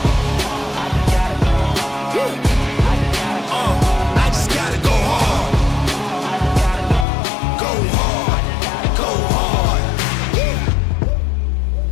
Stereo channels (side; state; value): right; drops out; at 7.1 s